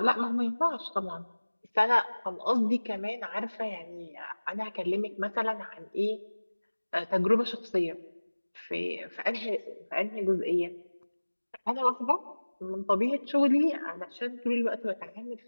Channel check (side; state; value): both; inverted; correlation -1.00